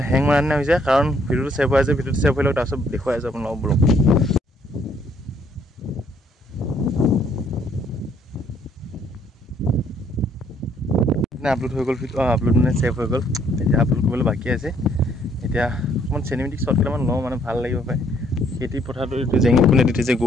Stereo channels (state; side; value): normal; both; correlation 0.66